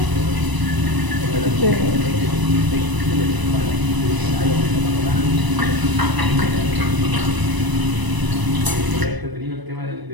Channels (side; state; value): left; late; 1.0 ms